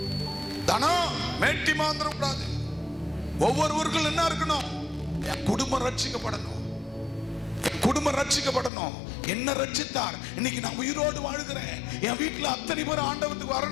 தனம் மேட்டிமை வந்துடக்கூடாது. ஒவ்வொருவர்கள் என்ன இருக்கணும்? குடும்பம் ரட்சிக்கப்படணும். குடும்பம் ரட்சிக்கப்படணும். என்ன ரட்சித்தார்? இன்னைக்கு நான் உயிரோடு வாழ்கிறேன். என் வீட்டுல அத்தனை பேர் ஆண்டவத்துக்கு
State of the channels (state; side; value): drops out; right; at 8.7 s